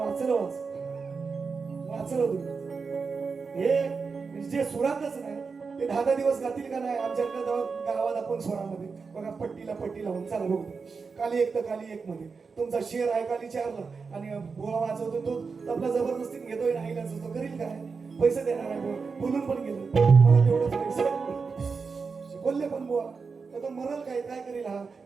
वाचलं तुम्ही. हे जे सुरातच नाही ते 10 दिवस गातील का नाही. आमच्या गावात आपण स्वरामध्ये बघा पट्टी लावून चला बघू. काली 1 तर काली 1 मध्ये तुमचा शेर आहे काली 4ला आणि बोळा वाजवतो तो आपला जबरदस्तीने घेतोय नाही तो करील काय. पैसे देणार आहे बोलून पण गेलो मला तेवढंच पैसे बोलले पण बुवा तर तो मरल काय करेल. हा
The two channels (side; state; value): left; quieter; 5.0 dB